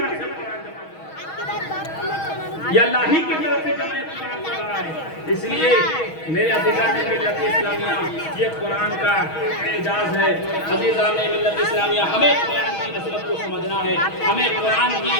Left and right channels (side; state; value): right; late; 6.3 ms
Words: سے قرآن جمع کر رہا ہے، یہ اللہ ہی کی طرف سے جمع قرآن کر رہا ہے۔ اس لیے میرے عزیزان ملت اسلامیہ، یہ قرآن کا اعجاز ہے۔ عزیزان ملت اسلامیہ، ہمیں قرآن کی عظمت کو سمجھنا ہے، ہمیں قرآن کی